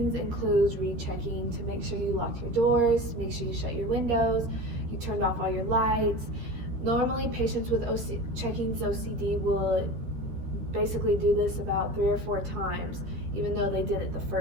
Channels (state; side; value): late; left; 13 ms